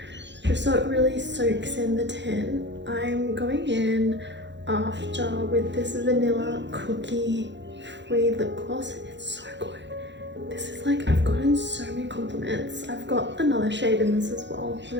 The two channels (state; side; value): late; left; 0.52 ms